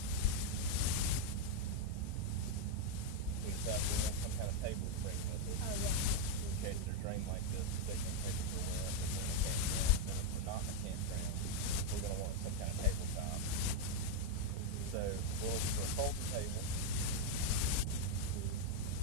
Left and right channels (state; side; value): different; both; correlation 0.01